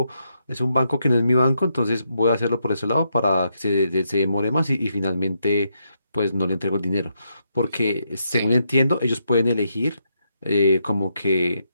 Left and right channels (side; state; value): both; inverted; correlation -0.80